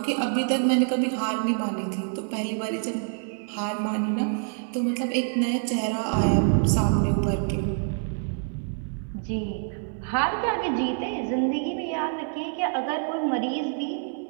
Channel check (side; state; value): left; silent; digital silence